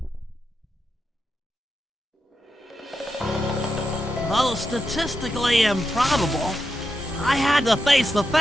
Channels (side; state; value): both; normal; correlation 0.87